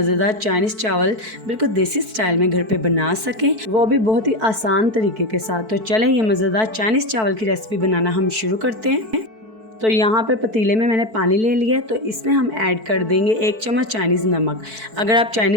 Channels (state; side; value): late; left; 4.5 ms